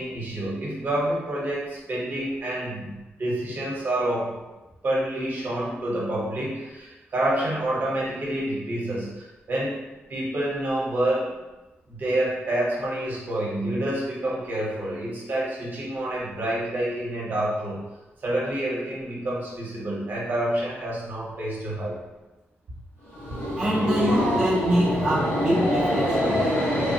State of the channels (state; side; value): normal; both; correlation 0.81